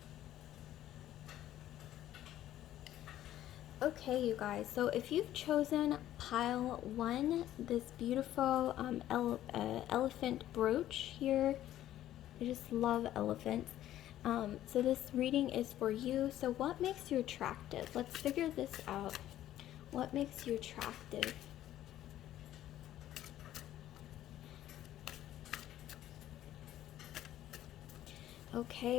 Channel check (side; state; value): right; quieter; 12.9 dB